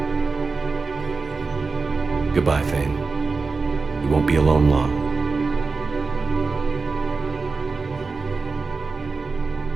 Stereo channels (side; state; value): left; quieter; 4.3 dB